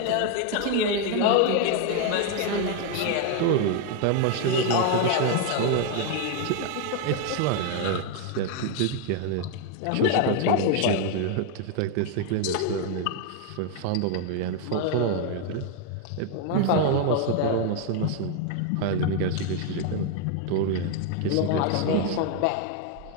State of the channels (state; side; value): different; both; correlation 0.01